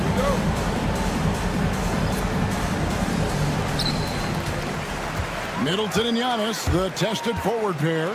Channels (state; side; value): identical; both; correlation 1.00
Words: Middleton and Giannis, the tested forward pair.